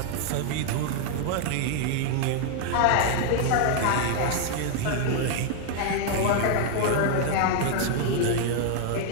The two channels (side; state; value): both; different; correlation 0.00